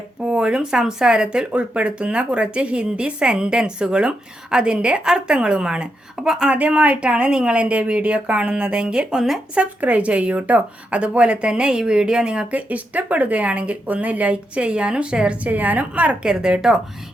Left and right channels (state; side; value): normal; both; correlation 0.84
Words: സംസാരത്തിൽ ഉൾപ്പെടുത്തുന്ന കുറച്ച് ഹിന്ദി സെൻറ്റൻസുകളും അതിൻ്റെ അർത്ഥങ്ങളുമാണ്. അപ്പോൾ ആദ്യമായിട്ടാണ് നിങ്ങൾ എൻ്റെ വീഡിയോ കാണുന്നതെങ്കിൽ ഒന്ന് സബ്സ്ക്രൈബ് ചെയ്യൂ കേട്ടോ. അതുപോലെ തന്നെ ഈ വീഡിയോ നിങ്ങൾക്ക് ഇഷ്ടപ്പെടുകയാണെങ്കിൽ ഒന്ന് ലൈക്ക് ചെയ്യാനും ഷെയർ ചെയ്യാനും മറക്കരുത് കേട്ടോ.